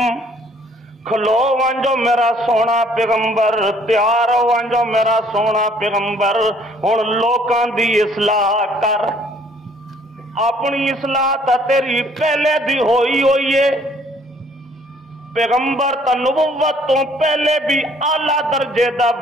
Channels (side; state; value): both; normal; correlation 0.60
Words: کھلو وانجو میرا سونا پیغمبر، تیار ہو وانجو میرا سونا پیغمبر. ہن لوکاں دی اصلاح کر، اپنی اصلاح تا تیری پہلے دی ہوئی ہے. پیغمبر تا نبوت تو پہلے بھی اعلیٰ درجے دا